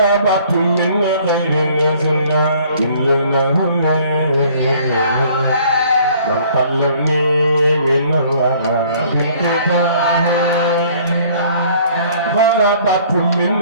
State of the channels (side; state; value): both; inverted; correlation -0.57